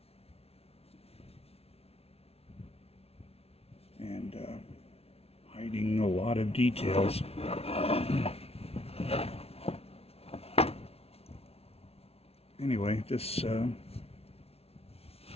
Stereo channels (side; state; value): right; late; 0.30 ms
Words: And hiding a lot of details. Anyway, this